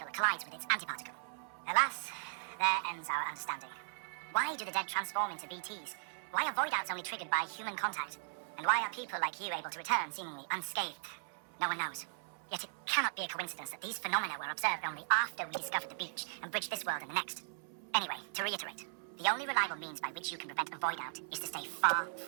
collides with its antiparticle. Alas, there ends our understanding. Why do the dead transform into BTs? Why are void outs only triggered by human contact? And why are people like you able to return seemingly unscathed? No one knows. Yet it cannot be a coincidence that these phenomena were observed only after we discovered the beach and bridged this world and the next. Anyway, to reiterate, the only reliable means by which you can prevent a void out is to stay far,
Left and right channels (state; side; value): silent; left; 53 dB below the other